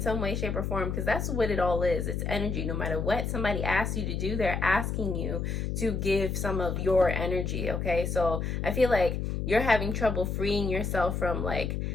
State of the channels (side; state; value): left; noise; hum, 2 dB below the sound